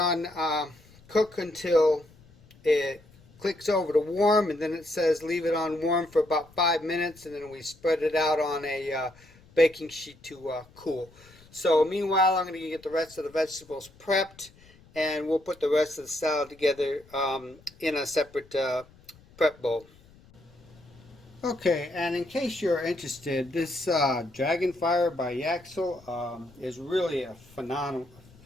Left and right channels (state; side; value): noise; left; rumble, 26 dB below the sound